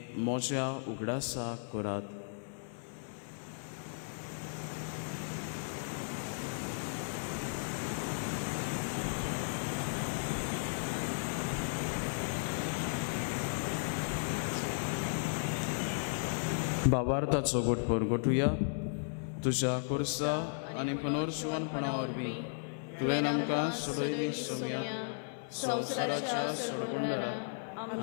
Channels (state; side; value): silent; right; 54 dB below the other